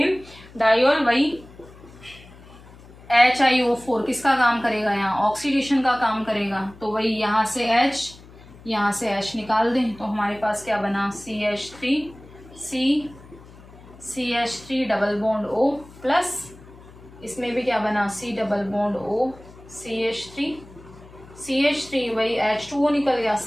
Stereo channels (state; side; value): noise; left; hum, 21 dB below the sound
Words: डायोल, वही HiO4 किसका काम करेगा, यहाँ ऑक्सीडेशन का काम करेगा। तो वही यहाँ से H, यहाँ से H निकाल दें, तो हमारे पास क्या बना, CH3 double bond O plus इसमें भी क्या बना, C double bond O CH3 वही H2O निकल गया,